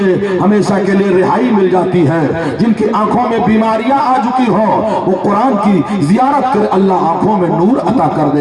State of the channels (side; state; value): both; identical; correlation 1.00